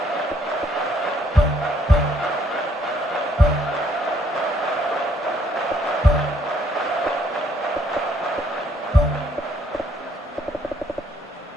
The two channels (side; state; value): both; normal; correlation 0.67